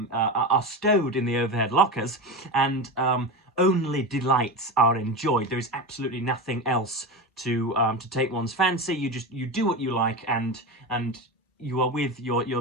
stowed in the overhead lockers, and only delights are enjoyed. There is absolutely nothing else to take one's fancy. You do what you like, and you are with your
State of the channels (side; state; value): both; normal; correlation 0.22